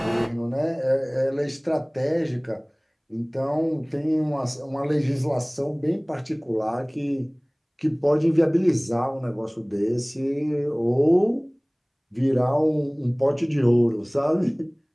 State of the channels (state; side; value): identical; both; correlation 1.00